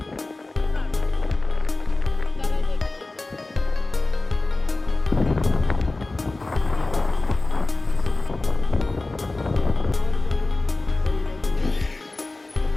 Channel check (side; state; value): right; quieter; 3.2 dB